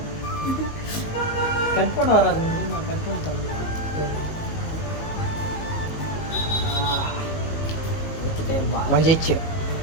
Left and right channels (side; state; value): right; late; 18 ms